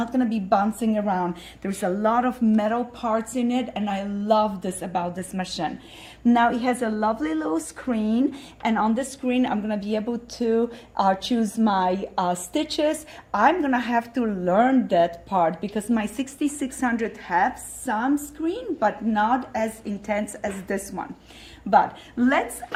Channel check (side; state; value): both; identical; correlation 1.00